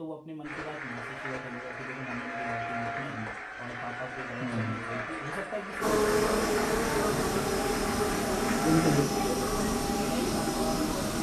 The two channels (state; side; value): identical; both; correlation 1.00